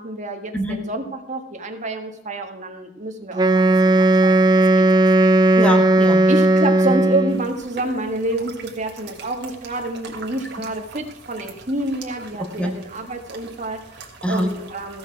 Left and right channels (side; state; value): both; normal; correlation 0.67